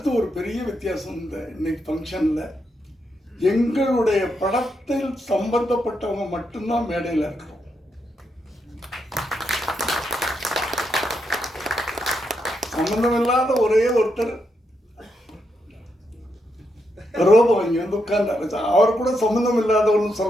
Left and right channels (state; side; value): normal; both; correlation 0.82